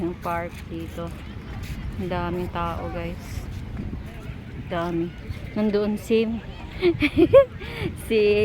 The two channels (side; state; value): both; identical; correlation 1.00